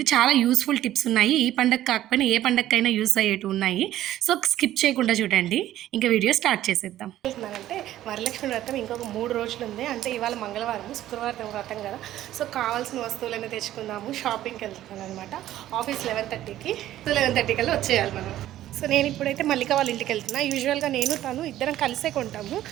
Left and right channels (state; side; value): quieter; left; 13.4 dB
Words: చాలా యూస్ఫుల్ టిప్స్ ఉన్నాయి. ఈ పండగ కాకపోయినా ఏ పండగకైనా యూస్ అయ్యేవి ఉన్నాయి. సో స్కిప్ చేయకుండా చూడండి. ఇంకా వీడియో స్టార్ట్ చేసేద్దాం. అంటే వరలక్ష్మి వ్రతం ఇంకొక 3 రోజులు ఉంది. అంటే ఇవాళ మంగళవారం, శుక్రవారం వ్రతం కదా. సో కావాల్సిన వస్తువులన్నీ తెచ్చుకుందాము. షాపింగ్కి వెళ్తున్నాను అనమాట. ఆఫీస్ 11:30కి 11:30 కల్లా వచ్చేయాలి మనం. సో నేను ఇప్పుడైతే మల్లిక వాళ్ళ ఇంటికి వెళ్తున్నా. యూజువల్గా నేను తను ఇద్దరం కలిసే కొంటాము.